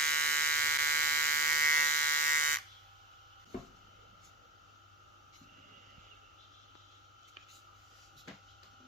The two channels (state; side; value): normal; both; correlation 0.33